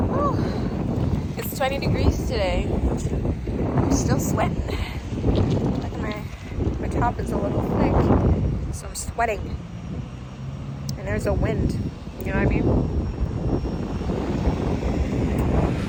Woo. It's 20 degrees today. I'm still sweating. Look at my top is a little thick, so I'm sweating. And there's a wind. You know what I mean?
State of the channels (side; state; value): both; identical; correlation 1.00